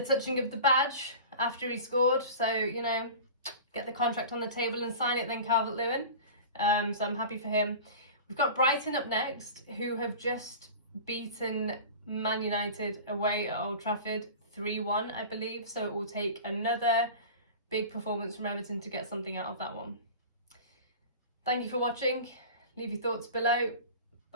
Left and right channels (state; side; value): inverted; both; correlation -0.36